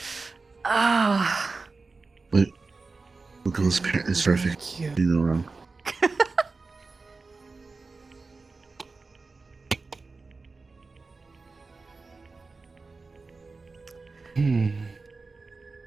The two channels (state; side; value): quieter; left; 3.9 dB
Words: Ah. But Wiggles' parent is perfect. You know wrong.